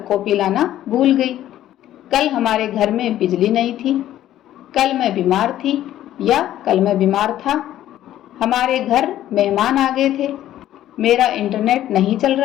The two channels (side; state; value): right; quieter; 12.7 dB